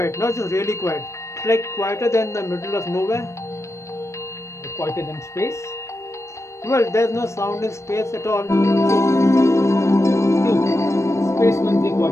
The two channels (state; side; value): late; right; 0.14 ms